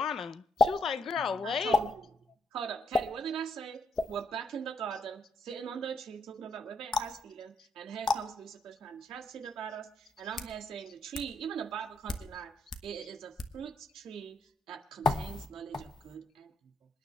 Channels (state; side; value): normal; both; correlation 0.74